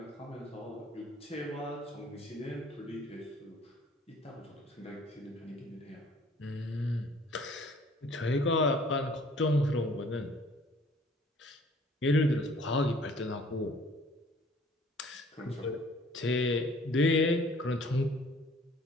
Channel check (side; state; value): both; normal; correlation 0.55